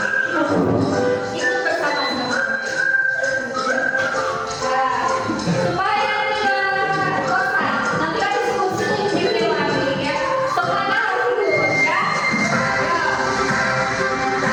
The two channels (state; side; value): identical; both; correlation 1.00